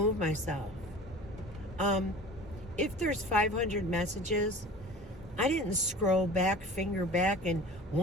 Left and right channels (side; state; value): both; normal; correlation 0.41